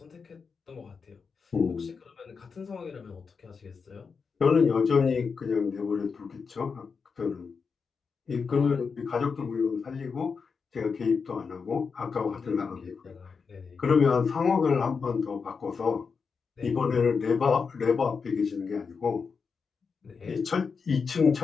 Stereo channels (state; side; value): quieter; right; 5.4 dB